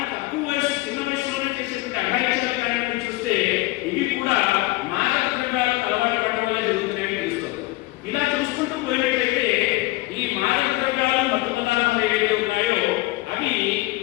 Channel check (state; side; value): quieter; right; 20.5 dB